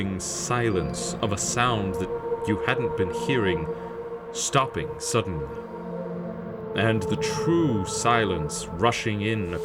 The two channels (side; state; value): both; identical; correlation 1.00